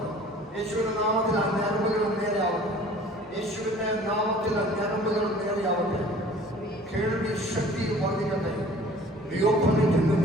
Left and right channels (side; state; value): both; normal; correlation 0.49